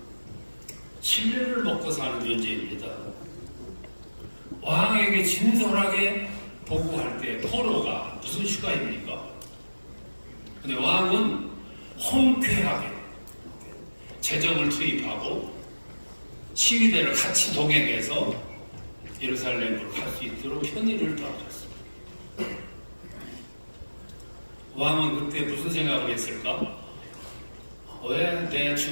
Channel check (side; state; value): both; inverted; correlation -1.00